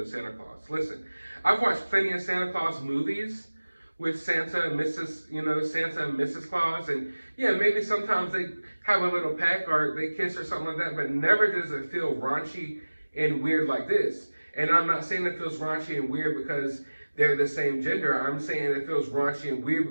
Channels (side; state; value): both; inverted; correlation -1.00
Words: Santa Claus? Listen, I've watched plenty of Santa Claus movies with Santa and Mrs., you know, Santa and Mrs. Claus. And yeah, maybe sometimes they have a little peck or they kiss or something like that, but never does it feel raunchy and weird like this. And I'm not saying it feels raunchy and weird because they're the same gender. I'm saying it feels raunchy and weird